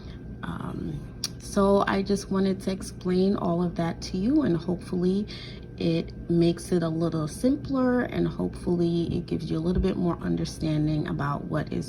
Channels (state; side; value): identical; both; correlation 1.00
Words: So I just wanted to explain all of that to you, and hopefully it makes it a little simpler, and hopefully it gives you a little bit more understanding about what